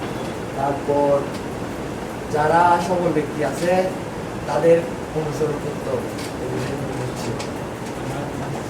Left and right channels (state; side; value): identical; both; correlation 1.00